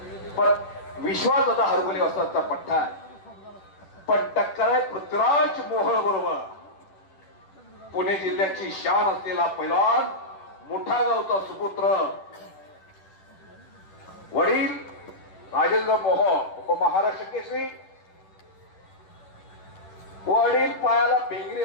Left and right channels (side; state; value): right; late; 10 ms